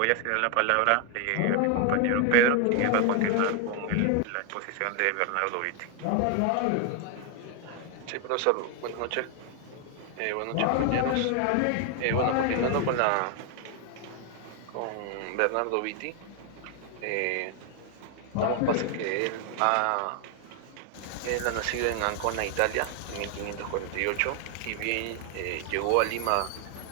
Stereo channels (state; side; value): different; both; correlation 0.00